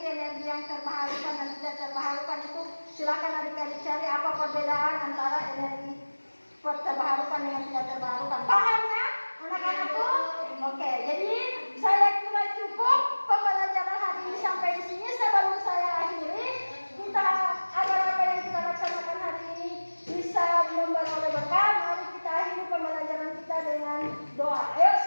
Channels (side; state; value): both; inverted; correlation -1.00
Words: energi yang terbarukan dan tidak terbarukan itu silakan adik-adik cari apa perbedaan antara energi terbarukan dengan tidak terbarukan. Paham ya anak-anakku? Oke, jadi saya kira cukup pembelajaran hari ini sampai di sini. Sebelum saya akhiri, kita agar apa yang kita laksanakan hari ini bisa membawa berkah. Mari kita akhiri pembelajaran kita dengan doa. Ayo